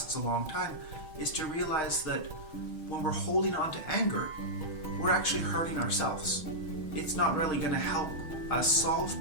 a long time is to realize that when we're holding on to anger, we're actually hurting ourselves. It's not really going to help us solve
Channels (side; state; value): right; late; 6.3 ms